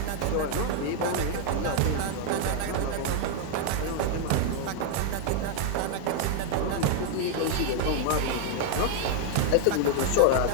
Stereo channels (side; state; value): both; different; correlation 0.00